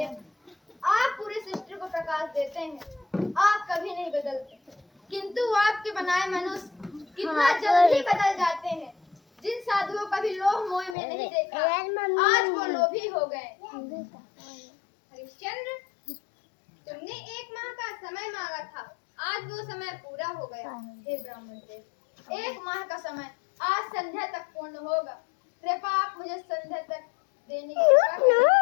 आप पूरी सृष्टि को प्रकाश देते हैं। आप कभी नहीं बदलते, किंतु आपके बनाए मनुष्य कितना जल्दी बदल जाते हैं। जिन साधुओं का भी लोभ मोह में नहीं देखा, आज वो लोभी हो गए। हरिश्चंद्र, तुमने 1 माह का समय मांगा था, आज वो समय पूरा हो गया। हे ब्राह्मण देव, 1 माह का समय आज संध्या तक पूर्ण होगा। कृपा आप मुझे संध्या तक देने की कृपा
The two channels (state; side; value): drops out; right; at 11.0 s